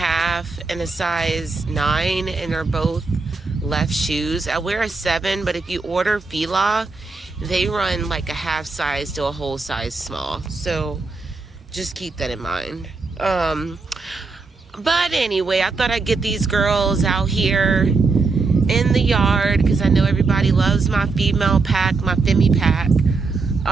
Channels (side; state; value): left; quieter; 4.1 dB